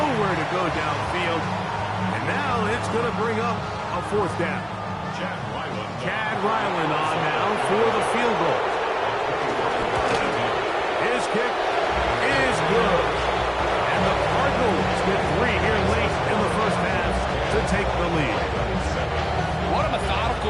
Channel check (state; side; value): identical; both; correlation 1.00